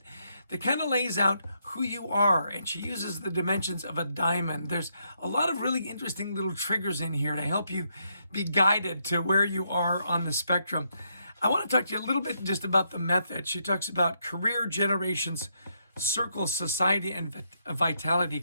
kind of lays out who you are. And she uses the dimensions of a diamond. There's a lot of really interesting little triggers in here to help you be guided to where you are on the spectrum. I want to talk to you a little bit just about the method. She talks about career, generations, circle, society, and vitality.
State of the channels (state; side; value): inverted; both; correlation -0.78